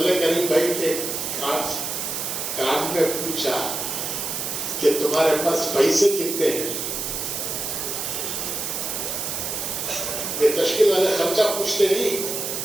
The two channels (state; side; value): noise; right; hiss, 3 dB below the sound